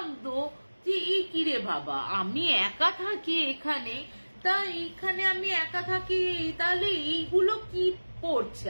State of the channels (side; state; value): both; inverted; correlation -1.00